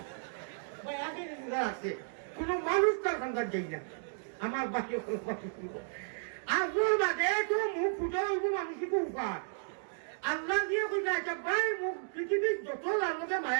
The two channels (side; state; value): left; silent; digital silence